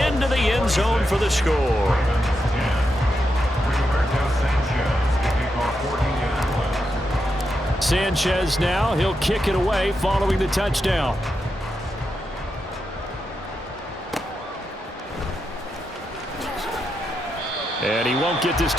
the end zone for the score. Sanchez now, he'll kick it away following the touchdown. And he won't get this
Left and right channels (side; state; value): both; normal; correlation 0.85